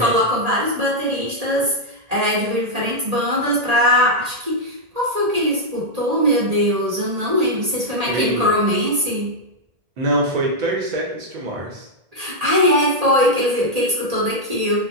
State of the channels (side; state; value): left; late; 1.8 ms